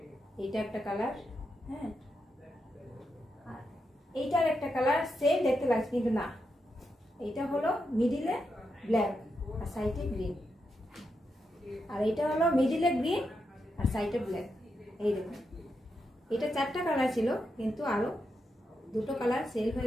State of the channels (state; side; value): normal; both; correlation 0.85